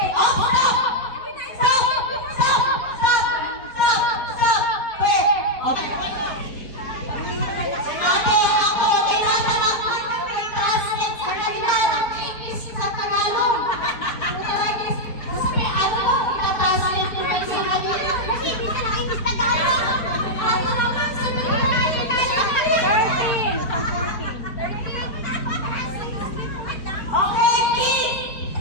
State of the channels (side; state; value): right; late; 4.2 ms